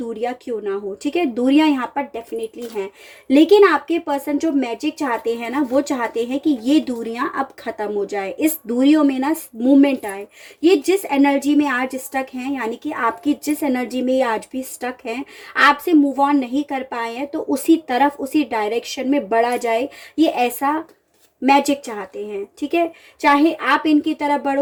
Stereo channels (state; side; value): identical; both; correlation 1.00